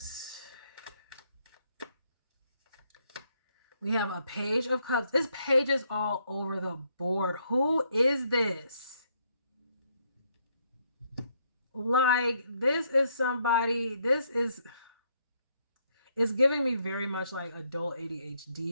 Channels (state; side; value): inverted; both; correlation -0.72